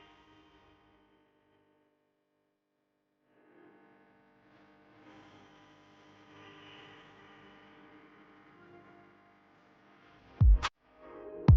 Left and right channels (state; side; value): identical; both; correlation 1.00